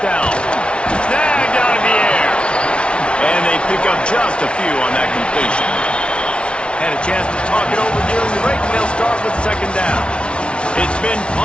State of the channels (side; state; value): right; late; 0.058 ms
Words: down. Snagged out of the air. And they pick up just a few on that completion. Had a chance to talk it over during the break, and they'll start with second down. It's been